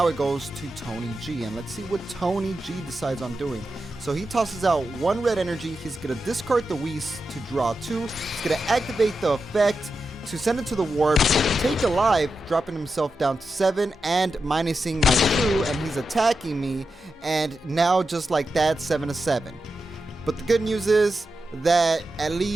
it goes to Tony G, and let's see what Tony G decides on doing. So he tosses out one red energy. He's gonna discard the Whis to draw two. He's gonna activate the effect to send it to the warp, take a life, dropping himself down to 7 and minusing my Shu, and he's attacking me. And now just like that, 7-7. But the good news is that at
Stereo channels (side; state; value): both; normal; correlation 0.89